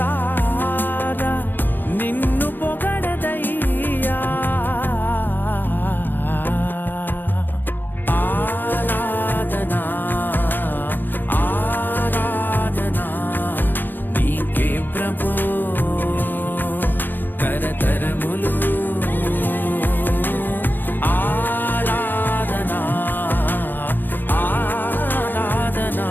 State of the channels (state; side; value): late; right; 0.092 ms